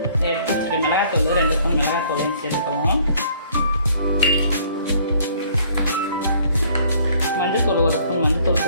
எடுத்து வச்சுட்டு மிளகாத்தூள் 2 ஸ்பூன் மிளகாத்தூளையும் சேர்த்துக்குவோம். மஞ்சத்தூள் 1 ஸ்பூன் மஞ்சத்தூள்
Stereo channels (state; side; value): inverted; both; correlation -0.59